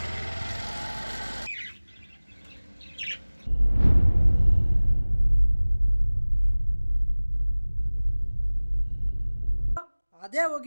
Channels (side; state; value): both; inverted; correlation -1.00